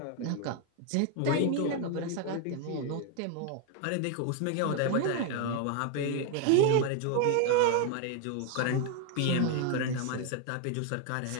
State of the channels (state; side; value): different; both; correlation 0.01